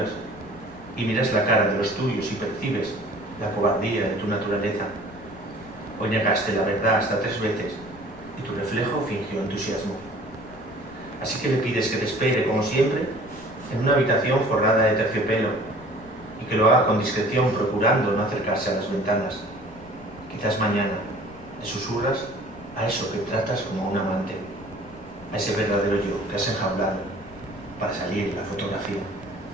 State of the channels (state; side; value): noise; left; rumble, 20 dB below the sound